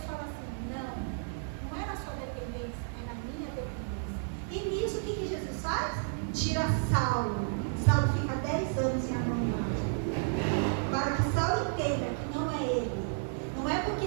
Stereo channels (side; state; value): left; silent; digital silence